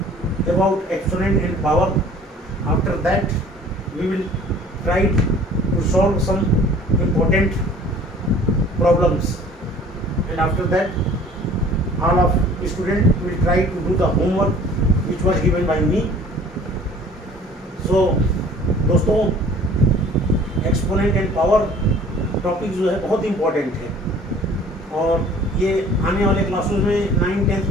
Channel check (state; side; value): normal; both; correlation 0.50